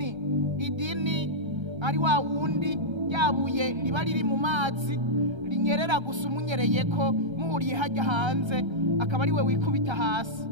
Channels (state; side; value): late; left; 1.3 ms